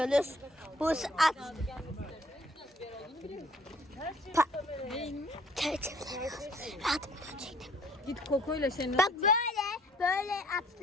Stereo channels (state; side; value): normal; both; correlation 0.58